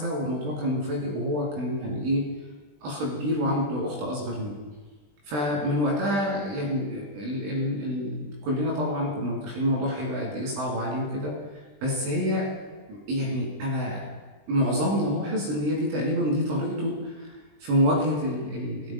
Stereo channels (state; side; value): late; left; 20 ms